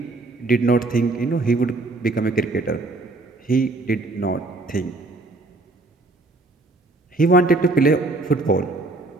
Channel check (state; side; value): quieter; left; 3.1 dB